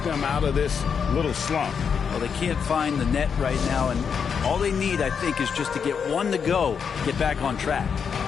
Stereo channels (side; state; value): right; quieter; 6.6 dB